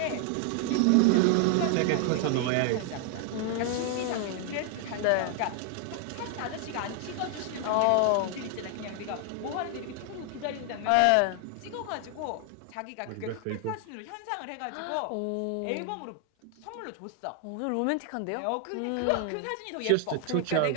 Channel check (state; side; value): different; both; correlation 0.00